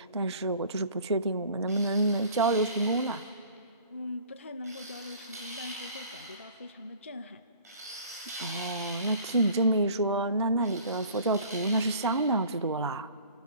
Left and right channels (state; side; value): inverted; both; correlation -0.48